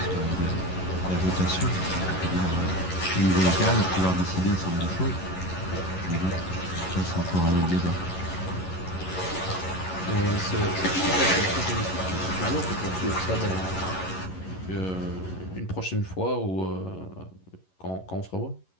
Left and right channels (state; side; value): late; right; 11 ms